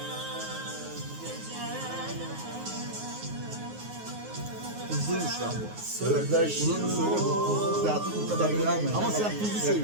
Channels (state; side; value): late; left; 9.5 ms